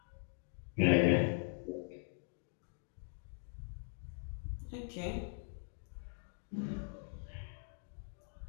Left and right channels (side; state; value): right; silent; digital silence